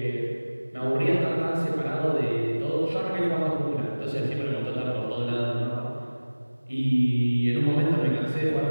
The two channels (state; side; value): inverted; both; correlation -1.00